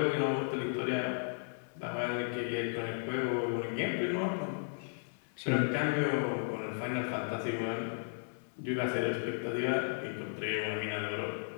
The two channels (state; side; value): silent; right; 55 dB below the other